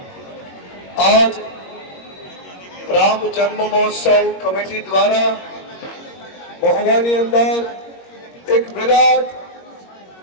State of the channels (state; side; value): late; right; 21 ms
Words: આજ રામ જન્મ મહોત્સવ કમિટી દ્વારા મહોવાની અંદર એક વિરાટ